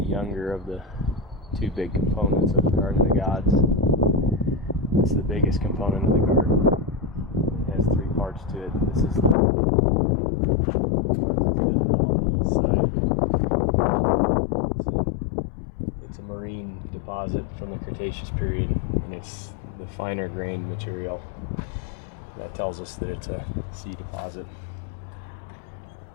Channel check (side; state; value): right; drops out; at 9.3 s